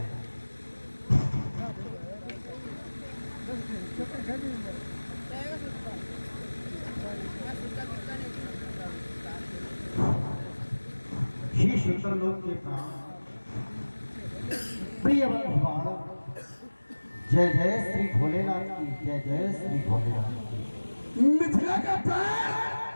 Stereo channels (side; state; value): both; inverted; correlation -1.00